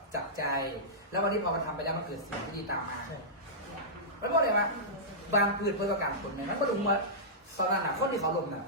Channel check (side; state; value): both; normal; correlation -0.15